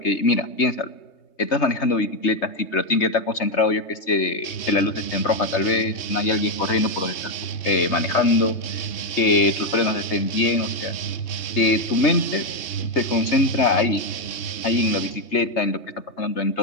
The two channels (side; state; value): right; late; 3.3 ms